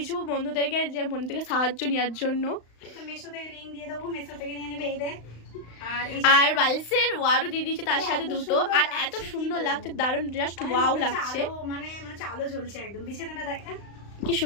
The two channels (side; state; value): right; late; 35 ms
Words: বন্ধুদেরকে, যে বন্ধু থেকে সাহায্য নেওয়ার জন্য। তো মেশো থেকে লিংক দিয়ে দেবো, মেশো থেকে নিয়ে নেবে। এই দেখ, আর বালিশের ওয়ারও দিয়ে দিয়েছে তার সাথে দুটো। আর এত সুন্দর লাগছে, দারুণ, জাস্ট ওয়াও লাগছে। মানে আলো জ্বলছে একদম। বিছানাটা দেখা কি